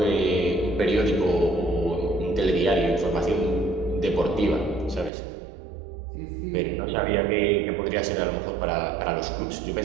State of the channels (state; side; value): drops out; left; at 5.1 s